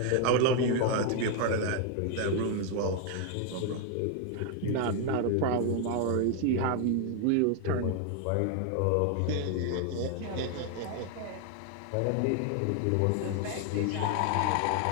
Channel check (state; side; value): different; both; correlation 0.01